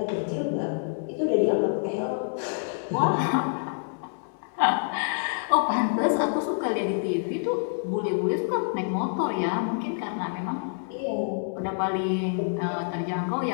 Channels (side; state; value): right; silent; 60 dB below the other